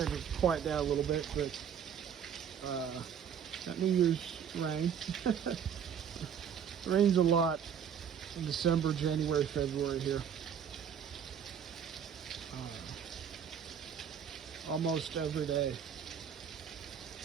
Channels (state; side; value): quieter; left; 8.1 dB